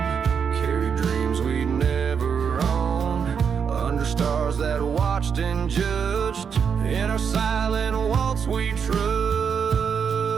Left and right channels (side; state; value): left; quieter; 6.8 dB